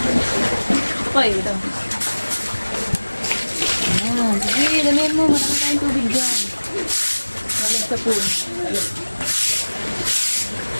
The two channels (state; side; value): inverted; both; correlation -1.00